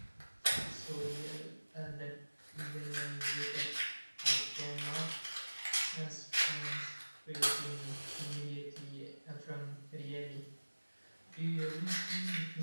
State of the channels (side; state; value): both; inverted; correlation -1.00